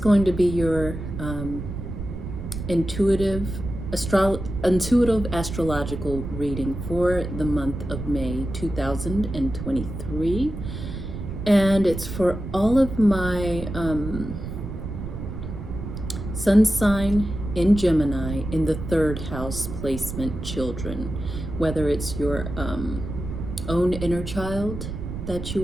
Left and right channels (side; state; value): right; noise; rumble, 7 dB below the sound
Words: to be your intuitive astrological reading for the month of May 2023, and it's for all of my sun sign in Gemini in the third house placement children, whether it's your own inner child that